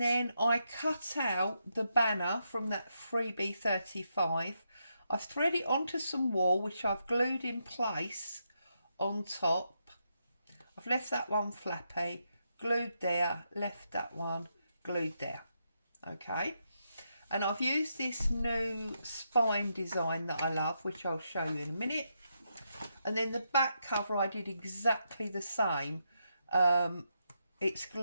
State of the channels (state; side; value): inverted; both; correlation -0.82